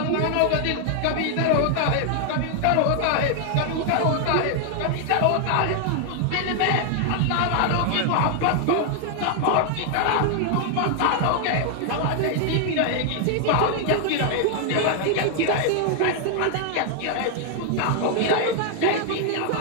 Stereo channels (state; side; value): different; both; correlation 0.00